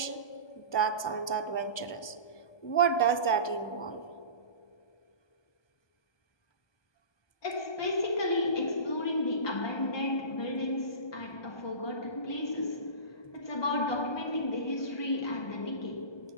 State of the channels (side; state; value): right; late; 1.2 ms